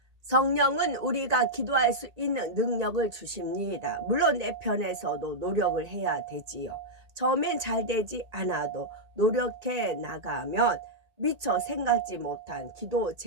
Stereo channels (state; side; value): late; left; 1.9 ms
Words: 성령은 우리가 기도할 수 있는 능력을 주십니다. 물론 내 편에서도 노력을 해야 되지요. 처음엔 잘 되지 않아도 노력해 나가면 미처 생각지 못한 기도